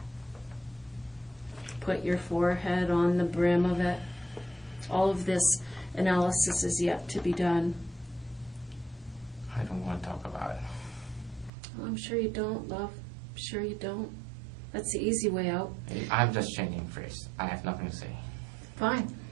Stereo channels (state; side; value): drops out; left; at 11.5 s